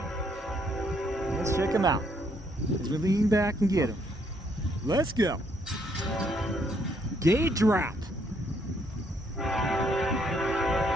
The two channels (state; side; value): normal; both; correlation 0.71